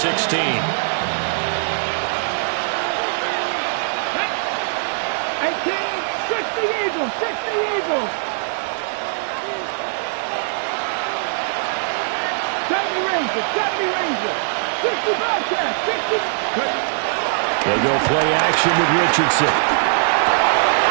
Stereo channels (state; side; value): silent; left; digital silence